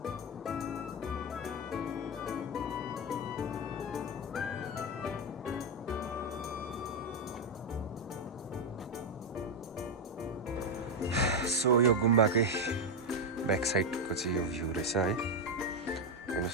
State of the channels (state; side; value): normal; both; correlation 0.06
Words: सो यो गुम्बाकै ब्याक साइडको चाहिँ यो भ्यू रहेछ है